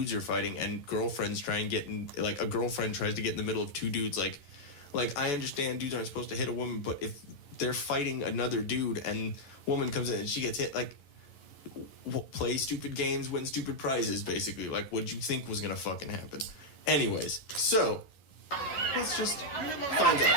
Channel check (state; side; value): late; right; 11 ms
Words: are fighting and girlfriends try and get in, like, a girlfriend tries to get in the middle of two dudes. Like I understand dudes aren't supposed to hit a woman, but if they're fighting another dude and woman comes in and she gets hit, like, play stupid games, win stupid prizes, basically. Like, what'd you think was gonna fucking happen? Anyways, so let's just find